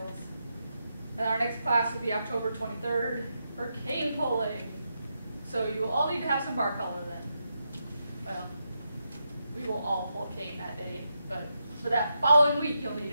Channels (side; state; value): both; inverted; correlation -0.85